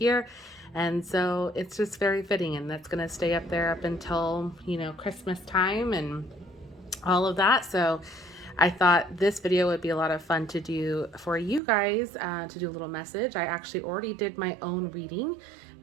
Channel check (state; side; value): drops out; left; at 11.6 s